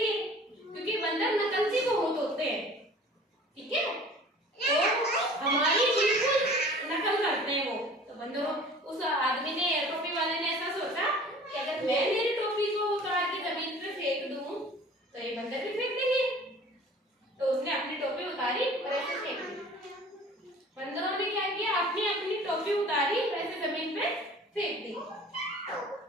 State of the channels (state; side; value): normal; both; correlation 0.46